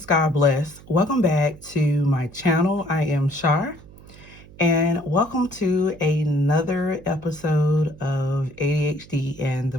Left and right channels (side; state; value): right; noise; hum, 21 dB below the sound